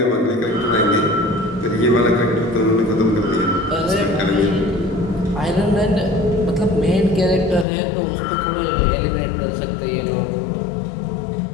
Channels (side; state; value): right; drops out; at 7.7 s